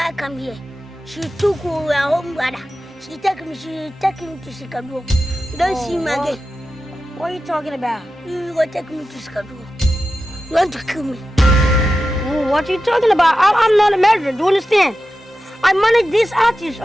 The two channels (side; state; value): both; normal; correlation 0.92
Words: come here, she took her home brother. She take him to Chicago. You don't see him again. What are you talking about? You go take me to Chicago. You want to kill me? Oh, what are you talking about? I'm not a murderer, do you understand? I manage this artist,